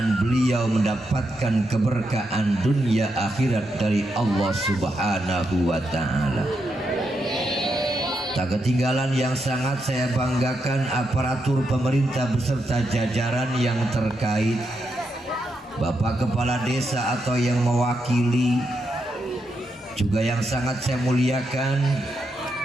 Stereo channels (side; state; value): both; normal; correlation 0.83